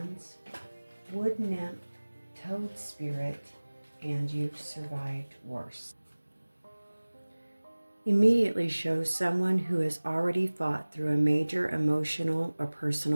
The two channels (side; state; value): both; inverted; correlation -1.00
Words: Wood Nymph, Toad Spirit, and You've Survived Worse. Immediately shows someone who has already fought through a major emotional or